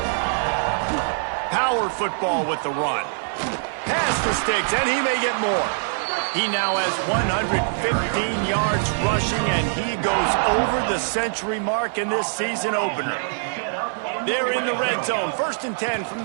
Power football with the run. Pass the sticks, and he may get more. He now has 115 yards rushing, and he goes over the century mark in this season opener. They're in the red zone, 1st and 10 from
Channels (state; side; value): silent; left; 55 dB below the other